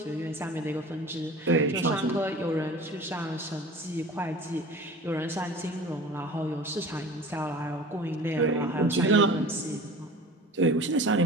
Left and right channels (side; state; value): both; normal; correlation 0.40